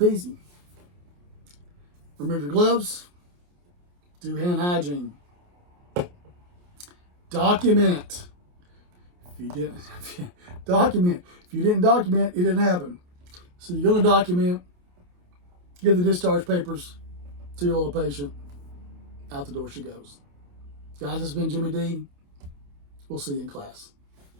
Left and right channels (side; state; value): left; late; 28 ms